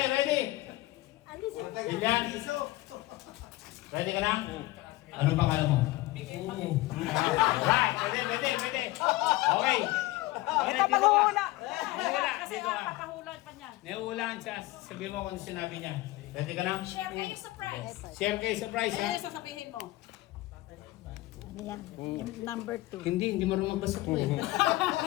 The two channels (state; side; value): quieter; right; 18.6 dB